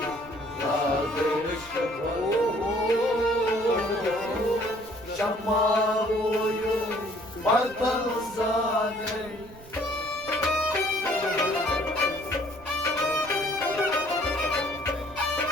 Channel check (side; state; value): right; noise; rumble, 20 dB below the sound